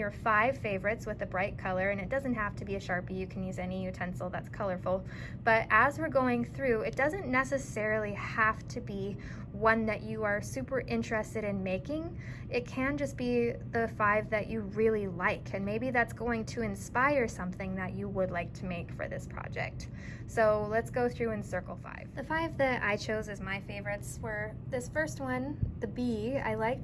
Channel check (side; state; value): both; identical; correlation 1.00